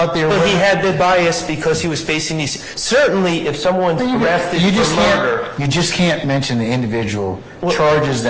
the... But he had the bias because he was facing these... Certainly, if someone's arrested for murder... You just can't mention the individual charges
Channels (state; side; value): identical; both; correlation 1.00